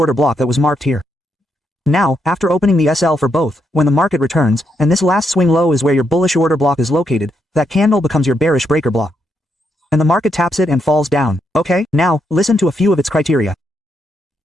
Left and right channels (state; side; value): normal; both; correlation 0.79